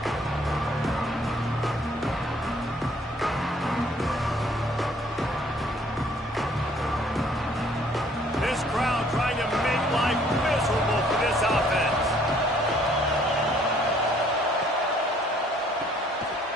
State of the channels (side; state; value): both; normal; correlation 0.61